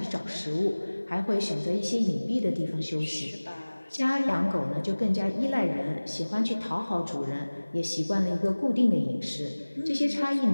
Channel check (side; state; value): both; inverted; correlation -1.00